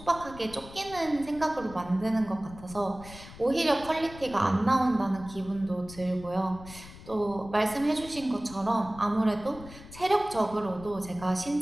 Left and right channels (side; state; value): left; noise; rumble, 16 dB below the sound